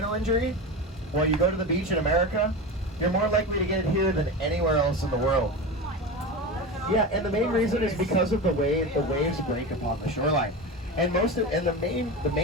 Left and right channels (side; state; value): both; normal; correlation 0.24